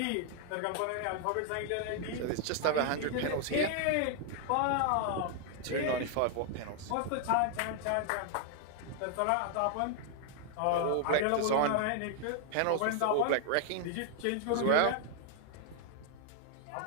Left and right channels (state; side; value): different; both; correlation 0.00